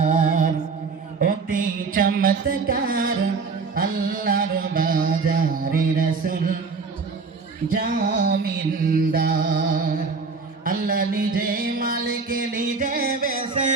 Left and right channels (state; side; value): quieter; left; 4.7 dB